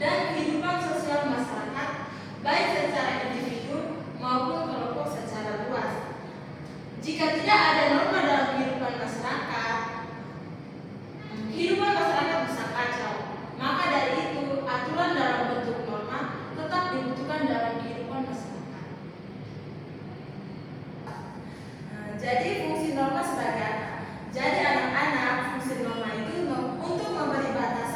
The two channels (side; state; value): both; identical; correlation 1.00